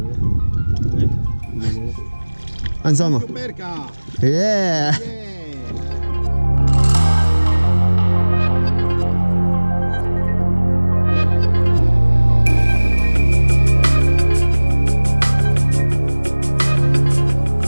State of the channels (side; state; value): both; inverted; correlation -1.00